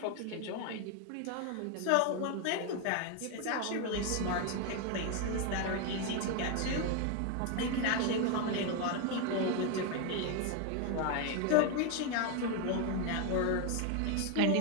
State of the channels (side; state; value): both; different; correlation 0.01